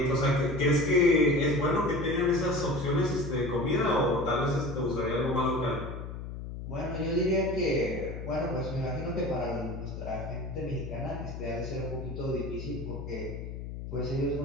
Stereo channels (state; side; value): noise; left; hum, 8 dB below the sound